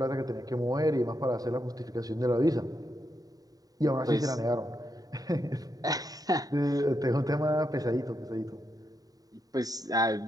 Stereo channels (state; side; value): late; left; 0.18 ms